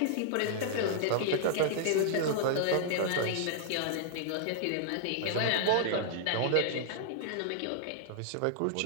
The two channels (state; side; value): different; both; correlation -0.01